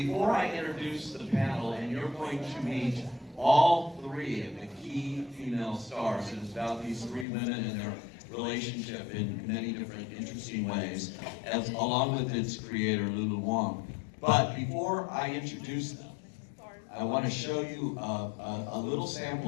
I introduce the panel, and you're going to meet all three of the key female stars, it is about these three women and their relationship in many different interesting ways, along with its creator, Lulu Wong. But before I introduce them, I want to show you a little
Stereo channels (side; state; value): right; drops out; at 7.2 s